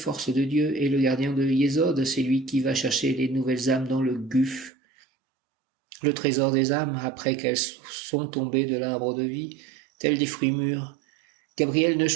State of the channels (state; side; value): drops out; left; at 4.7 s